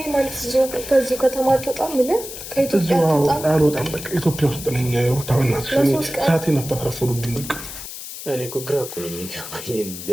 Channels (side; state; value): left; noise; hiss, 10 dB below the sound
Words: ማለት እዚሁ ከዚህ ከተማ ተጣም ምን ከኢትዮጵያ ተጣም አልወጣም በቃ ኢትዮጵያ ውስጥ ነኝ ታምን ሰዓቴን አታፍረፉልኝ በቃ እኔ እኮ ግራ እኮ ነው